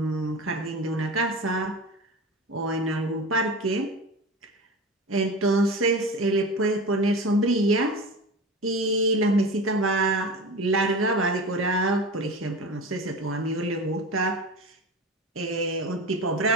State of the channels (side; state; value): both; normal; correlation 0.30